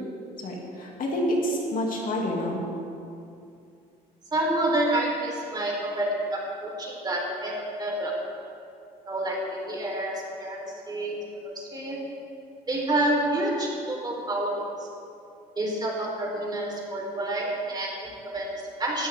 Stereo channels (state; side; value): normal; both; correlation 0.41